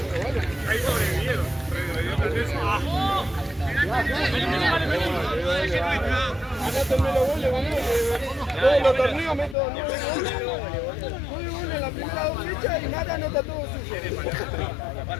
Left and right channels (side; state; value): right; drops out; at 9.6 s